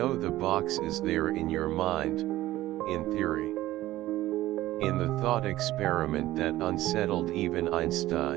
the box is there in your mind, in theory. In the thought experiment that unsettled even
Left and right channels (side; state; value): left; quieter; 15.8 dB